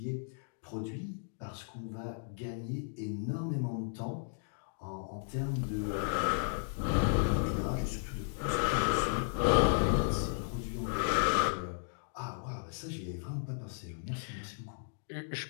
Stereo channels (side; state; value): right; silent; digital silence